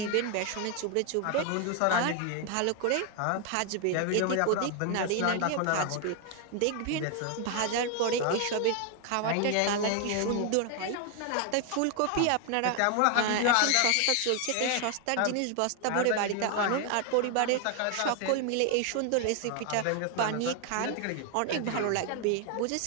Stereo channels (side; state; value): both; different; correlation 0.00